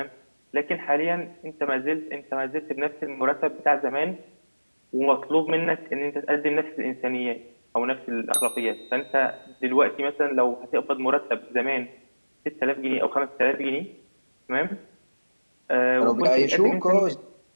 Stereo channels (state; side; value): inverted; both; correlation -1.00